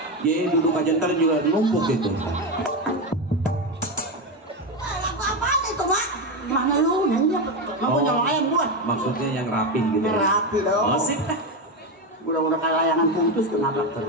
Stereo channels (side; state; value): both; normal; correlation 0.12